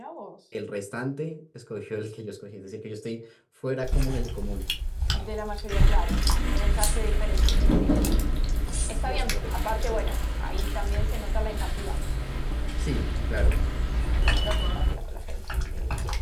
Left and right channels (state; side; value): identical; both; correlation 1.00